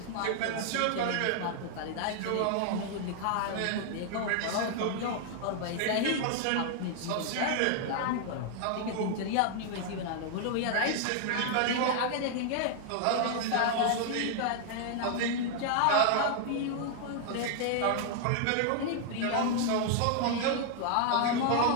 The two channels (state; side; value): different; both; correlation 0.00